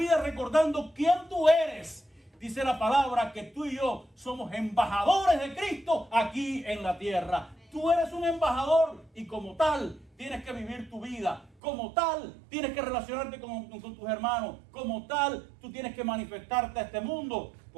recordando quién tú eres. Dice la palabra que tú y yo somos embajadores de Cristo aquí en la tierra. Tú eres un embajador y como tal tienes que vivir tu vida. Como tal tienes que relacionarte con tus hermanos. Como tal tú tienes que manifestarte a este mundo.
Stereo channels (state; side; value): drops out; left; at 11.5 s